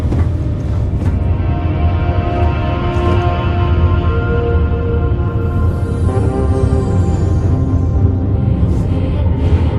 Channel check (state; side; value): identical; both; correlation 1.00